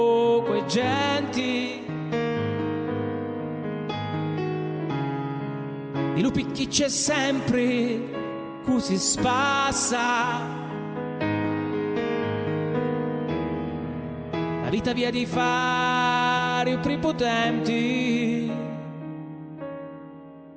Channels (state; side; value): identical; both; correlation 1.00